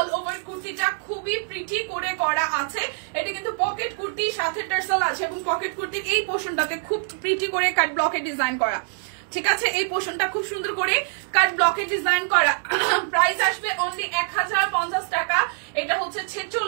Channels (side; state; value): left; silent; digital silence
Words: ওভার কুর্তিটা খুবই প্রিটি করে করা আছে। এটা কিন্তু পকেট কুর্তির সাথে টার্সেল আছে এবং পকেট কুর্তির এই পোর্শনটাতে খুব প্রিটি করে কাট ব্লকে ডিজাইন করা। ঠিক আছে, এই পোর্শনটা খুব সুন্দর করে কাট ব্লকে ডিজাইন করা। প্রাইস আসবে অনলি 1050 টাকা। এটা হচ্ছে